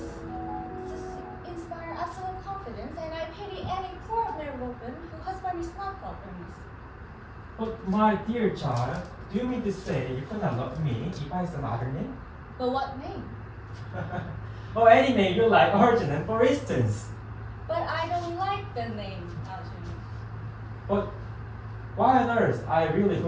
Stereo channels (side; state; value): both; identical; correlation 1.00